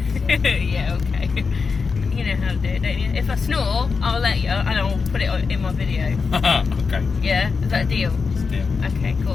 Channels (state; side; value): quieter; right; 5.0 dB